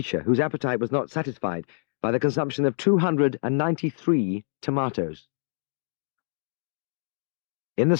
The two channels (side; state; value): right; silent; digital silence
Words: whose appetite was not satisfied by the consumption of 293 tomatoes. In the